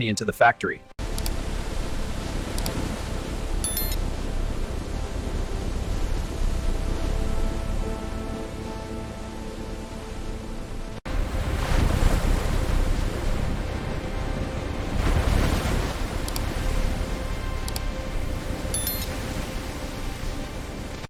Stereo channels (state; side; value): identical; both; correlation 1.00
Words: into the factory.